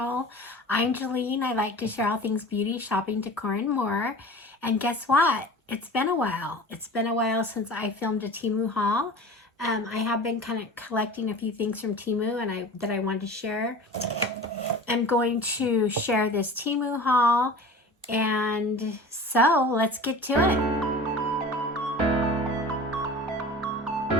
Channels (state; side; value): normal; both; correlation 0.38